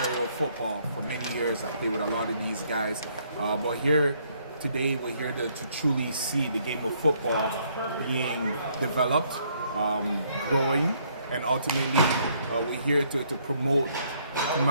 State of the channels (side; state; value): both; inverted; correlation -0.68